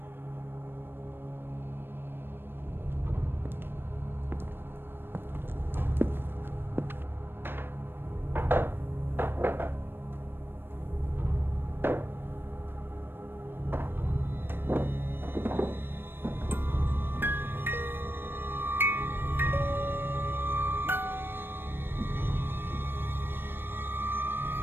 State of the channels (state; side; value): late; left; 0.10 ms